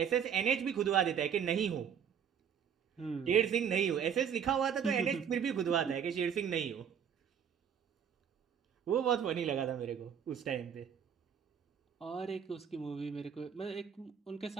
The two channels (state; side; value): quieter; left; 7.8 dB